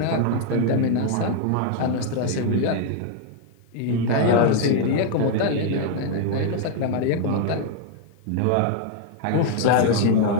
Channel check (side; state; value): both; different; correlation 0.00